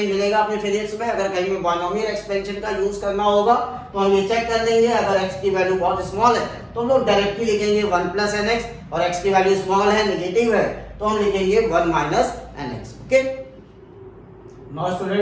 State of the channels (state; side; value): identical; both; correlation 1.00